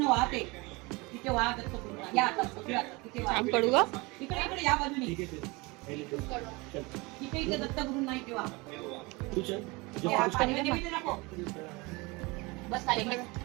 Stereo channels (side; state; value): left; quieter; 25.1 dB